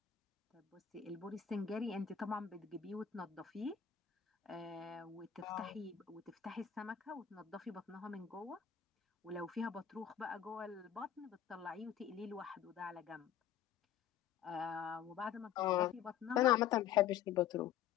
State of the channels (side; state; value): right; quieter; 9.3 dB